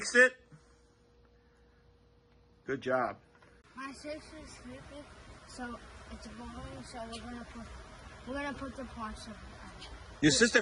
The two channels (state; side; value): identical; both; correlation 1.00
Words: it? Good job. My sister's sleeping, so it's boring. So we're gonna put the parts of it. Your